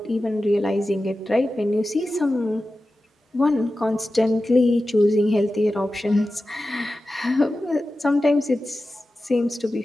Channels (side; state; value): both; normal; correlation 0.94